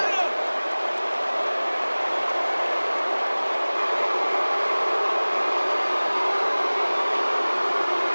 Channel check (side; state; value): both; inverted; correlation -1.00